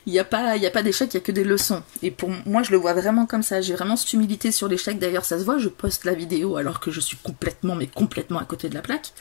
il n'y a pas d'échec, il n'y a que des leçons. Et pour moi, je le vois vraiment comme ça. J'ai vraiment cette humilité sur l'échec. D'ailleurs, ça se voit, je poste la vidéo alors que je suis complètement à côté de la plaque.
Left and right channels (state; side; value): silent; right; 60 dB below the other